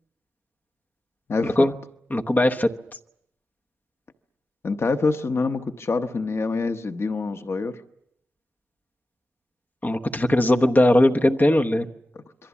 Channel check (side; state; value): both; normal; correlation 0.93